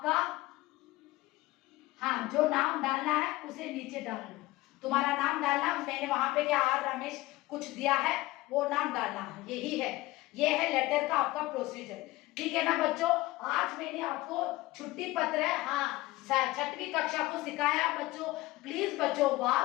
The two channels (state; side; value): quieter; right; 19.1 dB